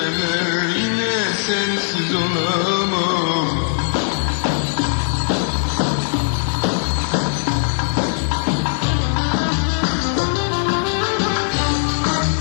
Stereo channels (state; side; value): silent; right; 66 dB below the other